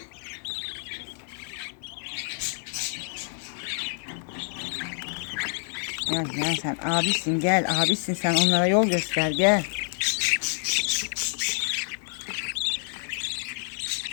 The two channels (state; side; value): silent; right; 59 dB below the other